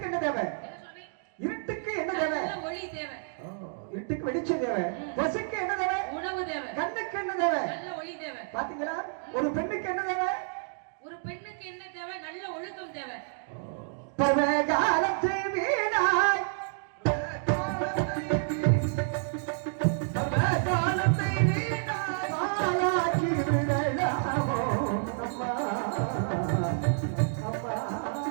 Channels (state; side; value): silent; left; digital silence